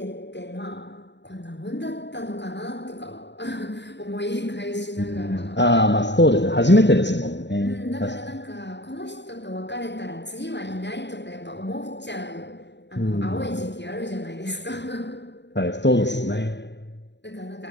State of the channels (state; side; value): late; right; 0.51 ms